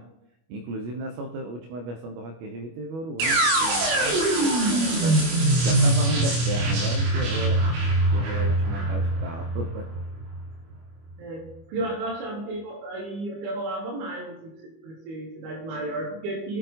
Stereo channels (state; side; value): late; left; 25 ms